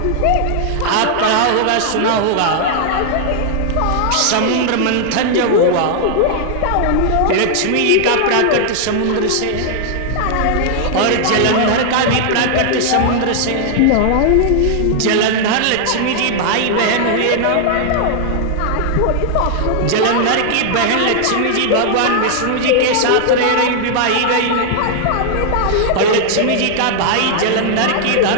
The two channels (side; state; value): both; different; correlation -0.01